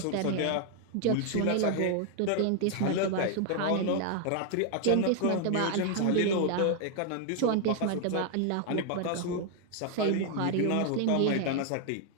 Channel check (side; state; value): both; different; correlation 0.00